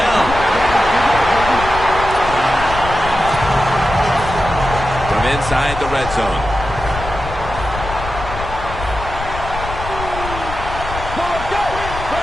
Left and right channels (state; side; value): noise; left; rumble, 9 dB below the sound